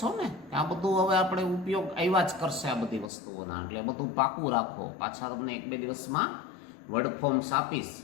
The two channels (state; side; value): drops out; right; at 3.1 s